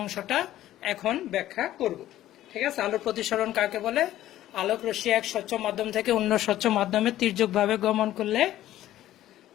এখন ব্যাখ্যা করব। ঠিক আছে, আলোর প্রতিসরণ কাকে বলে? আলোক রশ্মি এক স্বচ্ছ মাধ্যম থেকে অন্য স্বচ্ছ মাধ্যমে তির্যকভাবে গমন করলে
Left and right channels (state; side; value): quieter; right; 13.7 dB